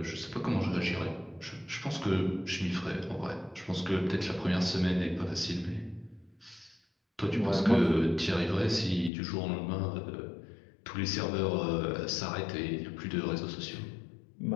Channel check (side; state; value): right; drops out; at 9.1 s